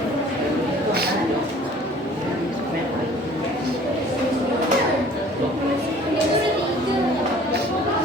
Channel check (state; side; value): normal; both; correlation 0.51